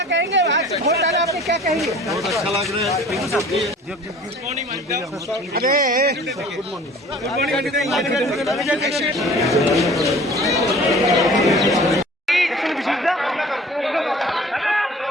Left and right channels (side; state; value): both; normal; correlation 0.47